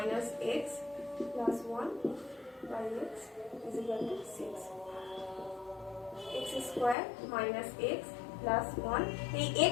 x plus 1 by x is equal to 6। x square minus x plus 1, এই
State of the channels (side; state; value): right; drops out; at 7.0 s